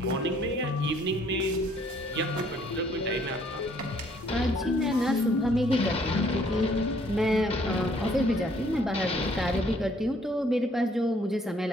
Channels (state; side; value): normal; both; correlation 0.63